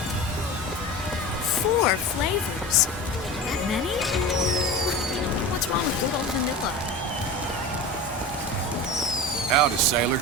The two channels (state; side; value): normal; both; correlation 0.30